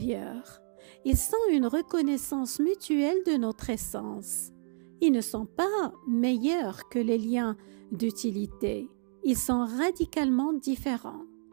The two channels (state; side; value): silent; left; 57 dB below the other